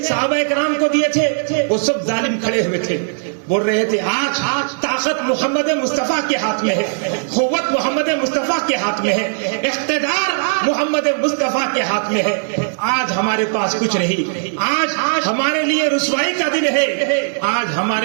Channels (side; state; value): left; silent; digital silence